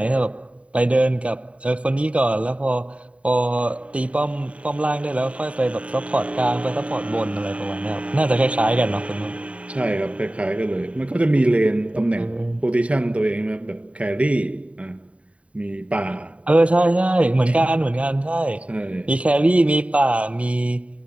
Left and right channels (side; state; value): left; late; 0.064 ms